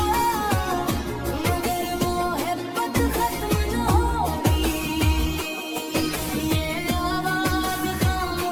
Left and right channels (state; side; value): identical; both; correlation 1.00